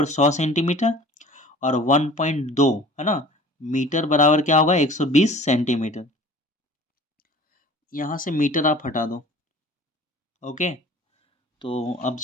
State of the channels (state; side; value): normal; both; correlation 0.44